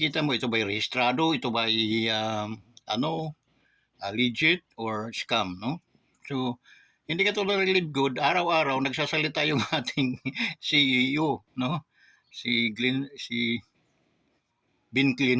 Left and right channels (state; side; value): identical; both; correlation 1.00